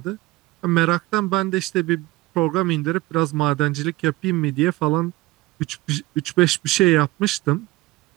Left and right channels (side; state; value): left; quieter; 19.7 dB